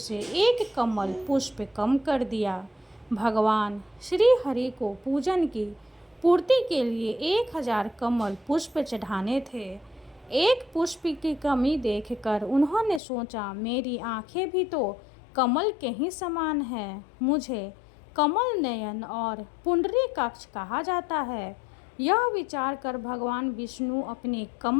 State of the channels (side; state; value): right; drops out; at 13.0 s